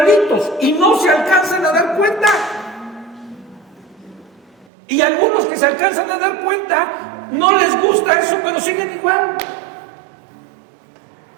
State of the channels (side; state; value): left; drops out; at 4.7 s